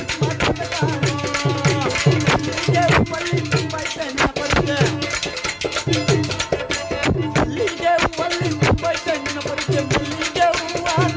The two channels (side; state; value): both; identical; correlation 1.00